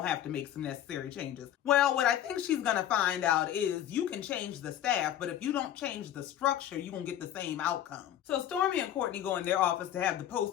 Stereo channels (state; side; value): quieter; right; 11.3 dB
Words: to have to make some necessary changes. Well, what I think she's going to find out is you can change the staff, but if you don't change the structure, you're going to get the same outcome. So Stormy and Courtney go in their office to have the